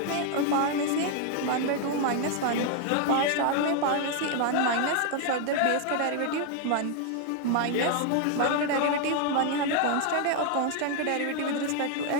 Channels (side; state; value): both; different; correlation 0.00